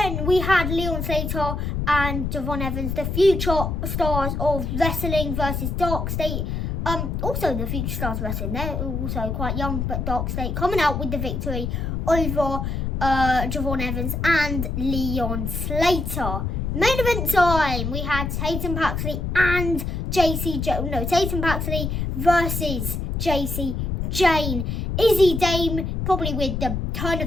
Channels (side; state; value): left; noise; rumble, 2 dB below the sound